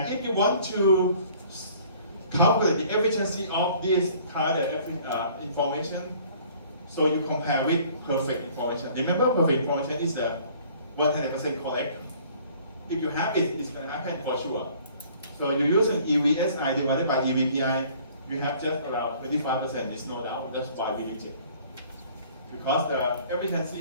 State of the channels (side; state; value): both; inverted; correlation -0.54